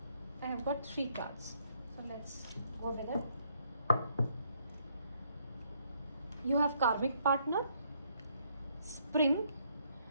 I have got 3 cards, so let's go with it. You have karmic partner, spring,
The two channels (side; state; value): both; inverted; correlation -0.70